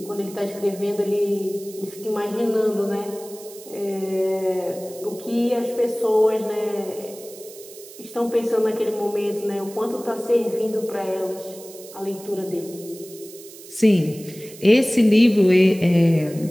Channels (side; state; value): right; noise; hiss, 18 dB below the sound